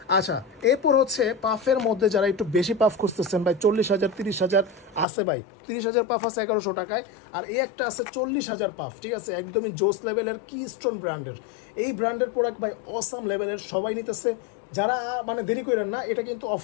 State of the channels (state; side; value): drops out; right; at 5.1 s